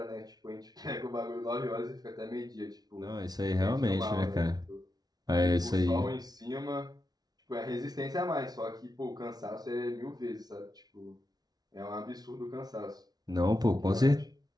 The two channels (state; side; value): late; left; 0.19 ms